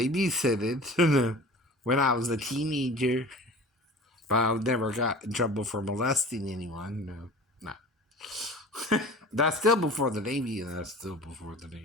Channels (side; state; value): both; normal; correlation 0.40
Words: when I was a teenager. But I never got in trouble for molesting anyone, no. That's still before the Navy, and that's still before the